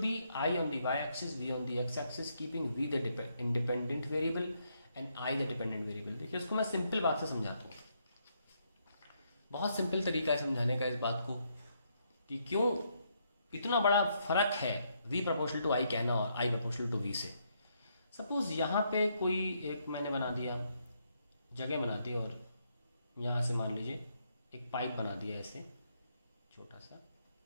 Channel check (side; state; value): both; inverted; correlation -0.76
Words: be I on the Y axis, V on the X axis, keeping V the independent variable and I the dependent variable. देखिए उसको मैं सिंपल बात से समझाता हूँ, बहुत सिंपल तरीका है समझाने का इस बात को कि क्यों इतना बड़ा फर्क है v प्रोपोर्शनल टू आई कहना और i प्रोपोर्शनल टू v से। सपोज यहाँ पे कोई एक मैंने बना दिया, जगह बना दी और यहाँ से मान लीजिए एक पाइप बना दिया ऐसे छोटा सा,